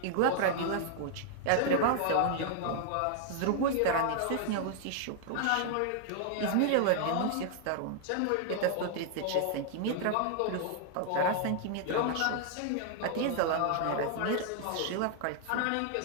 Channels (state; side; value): different; both; correlation 0.00